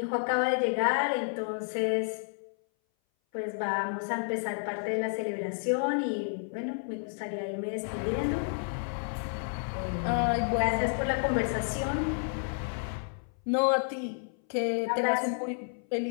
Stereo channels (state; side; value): silent; right; 57 dB below the other